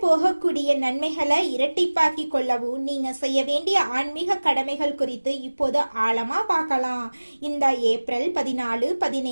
நன்மைகளை இரட்டிப்பாக்கி கொள்ளவும் நீங்க செய்ய வேண்டிய ஆன்மீக கடமைகள் குறித்து இப்போது ஆழமா பார்க்கலாம். இந்த ஏப்ரல் 14,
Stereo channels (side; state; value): both; inverted; correlation -1.00